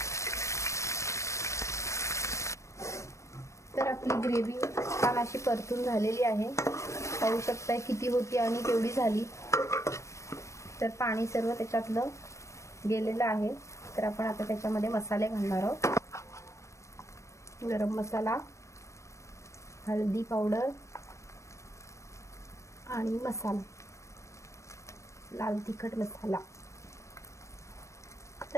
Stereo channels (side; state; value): right; late; 0.15 ms